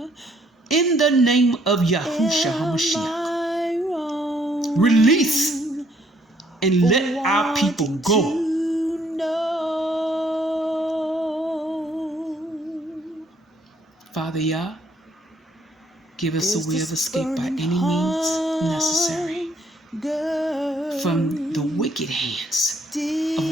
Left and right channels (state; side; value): normal; both; correlation 0.66